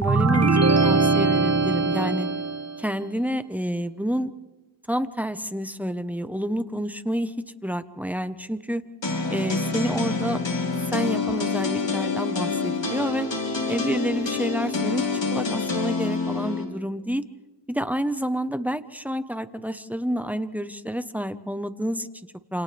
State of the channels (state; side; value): normal; both; correlation 0.44